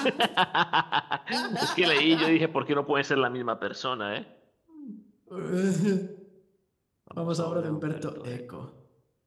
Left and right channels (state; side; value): identical; both; correlation 1.00